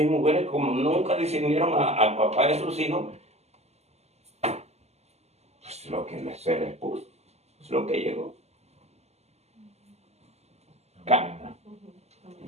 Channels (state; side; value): late; left; 0.31 ms